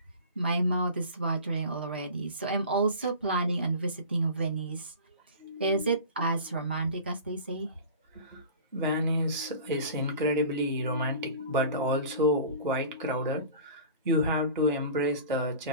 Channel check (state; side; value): inverted; both; correlation -0.39